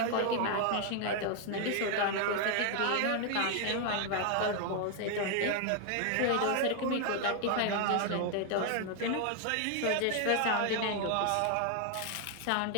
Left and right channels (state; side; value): different; both; correlation 0.00